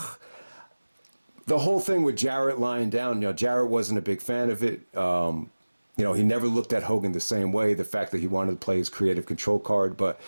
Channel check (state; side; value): inverted; both; correlation -1.00